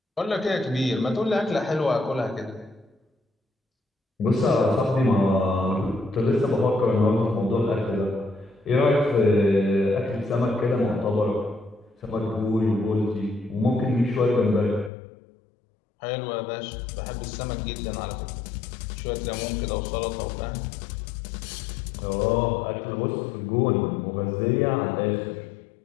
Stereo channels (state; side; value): drops out; right; at 14.9 s